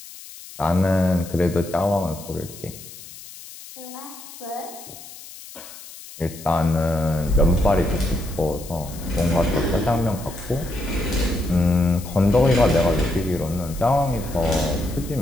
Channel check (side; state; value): left; noise; hiss, 16 dB below the sound